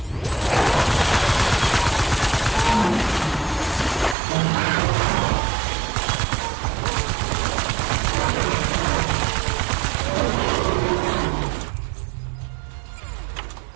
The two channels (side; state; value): left; drops out; at 4.2 s